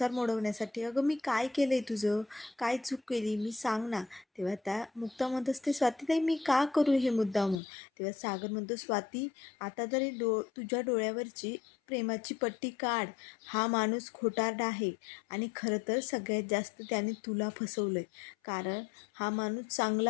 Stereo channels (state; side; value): drops out; right; at 7.6 s